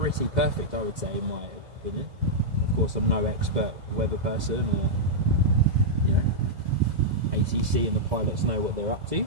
perfect, I would say, in my opinion. Of course, I'm no expert weather person, or, you know, ATC and the pilots know what they're up to.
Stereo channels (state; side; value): late; left; 2.0 ms